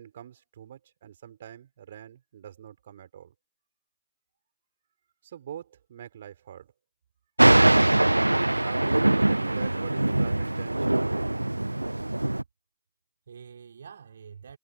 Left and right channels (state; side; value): inverted; both; correlation -1.00